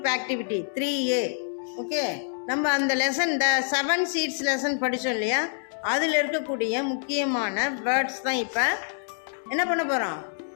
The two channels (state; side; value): silent; right; 61 dB below the other